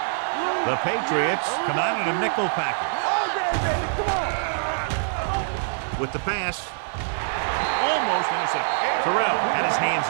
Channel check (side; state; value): left; silent; 58 dB below the other